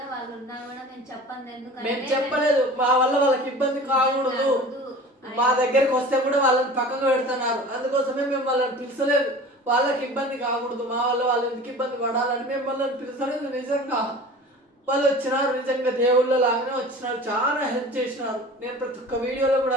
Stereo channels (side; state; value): both; normal; correlation 0.40